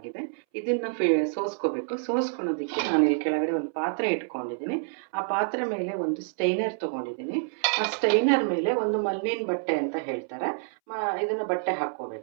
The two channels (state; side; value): silent; left; 60 dB below the other